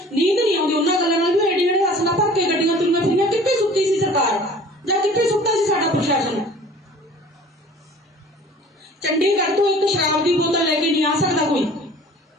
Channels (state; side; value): normal; both; correlation 0.47